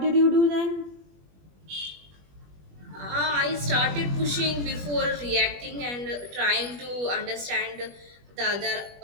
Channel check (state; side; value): late; left; 21 ms